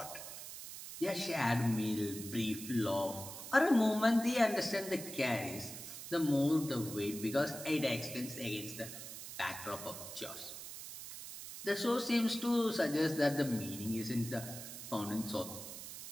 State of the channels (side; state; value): right; noise; hiss, 10 dB below the sound